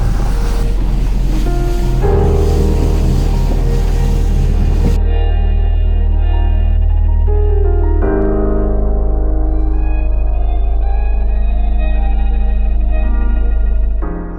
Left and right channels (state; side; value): identical; both; correlation 1.00